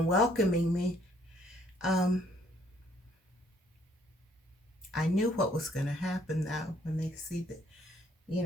me. I knew what was going to happen though when they see the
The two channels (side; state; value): both; normal; correlation 0.65